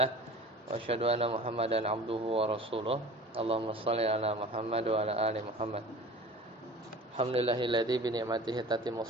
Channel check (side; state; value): both; normal; correlation 0.40